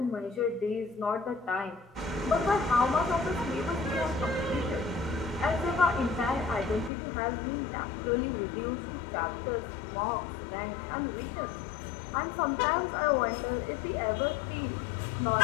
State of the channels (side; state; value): right; drops out; at 6.9 s